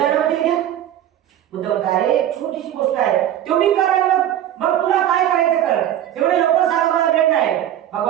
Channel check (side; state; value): left; quieter; 11.5 dB